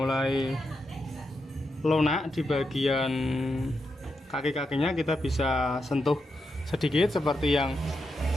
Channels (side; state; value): both; normal; correlation 0.85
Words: lunak di bagian kaki-kakinya. Kita bisa sentuh sedikit seperti yang